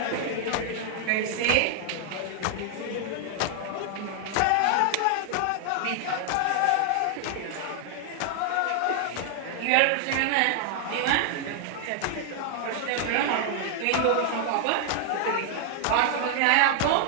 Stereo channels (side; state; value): both; different; correlation 0.00